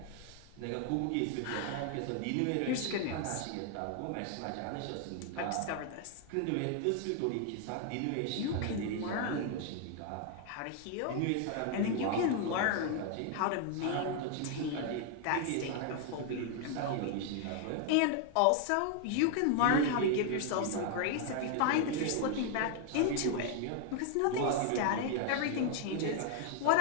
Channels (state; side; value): different; both; correlation 0.00